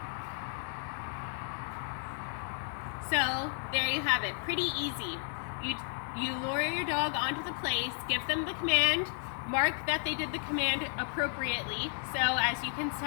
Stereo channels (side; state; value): right; silent; 56 dB below the other